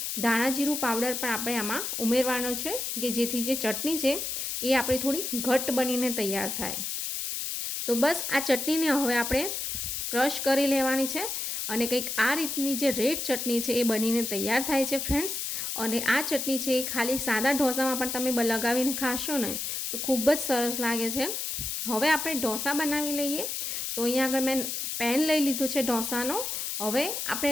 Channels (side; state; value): left; noise; hiss, 3 dB below the sound